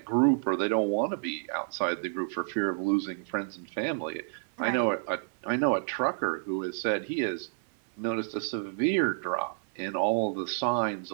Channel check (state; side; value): silent; left; 58 dB below the other